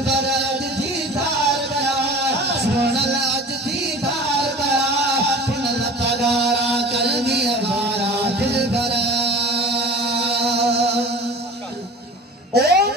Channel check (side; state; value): both; normal; correlation 0.40